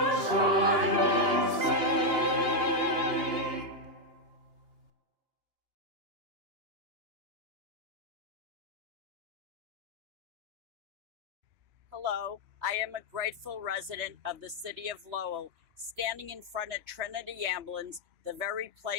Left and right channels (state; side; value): late; left; 2.9 ms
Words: Hello, I am a grateful resident of the city of Lowell, standing in front of Trinity Ambulance, the very